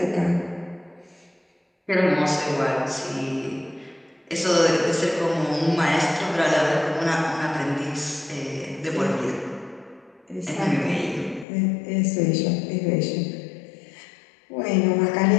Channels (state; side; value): drops out; right; at 11.5 s